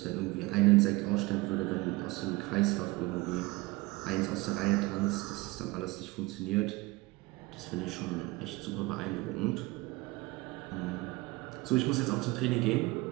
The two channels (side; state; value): left; quieter; 22.0 dB